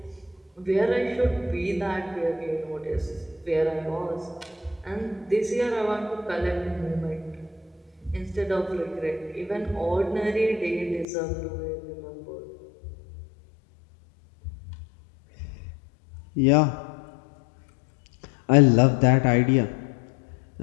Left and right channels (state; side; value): drops out; right; at 11.1 s